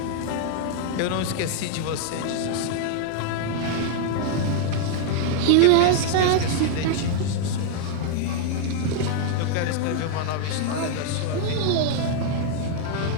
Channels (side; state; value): both; different; correlation -0.01